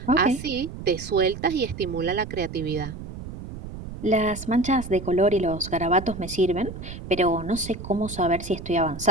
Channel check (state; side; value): noise; right; rumble, 11 dB below the sound